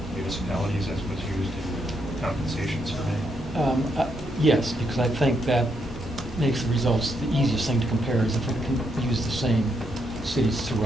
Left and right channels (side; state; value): both; normal; correlation 0.78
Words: municipalities as was used in the compensation survey? Yes, because I think that makes the results the easiest thing to compare is if we can use the same cities